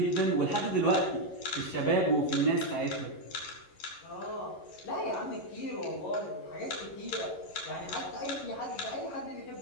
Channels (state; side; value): late; right; 11 ms